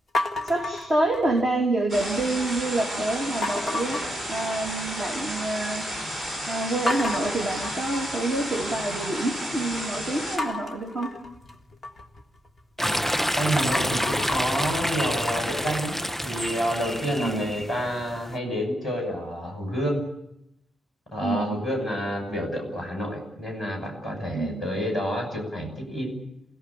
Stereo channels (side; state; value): both; normal; correlation 0.79